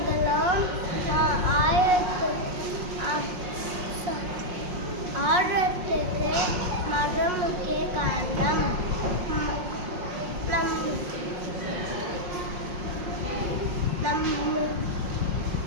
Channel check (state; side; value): late; left; 5.6 ms